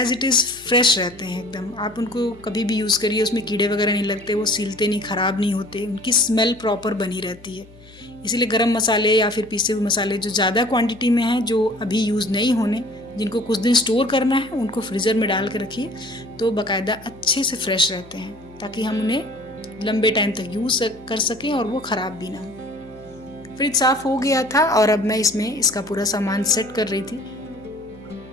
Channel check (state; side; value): noise; left; hum, 23 dB below the sound